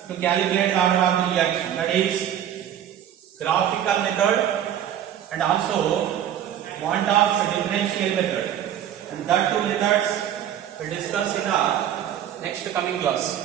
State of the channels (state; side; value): quieter; left; 10.3 dB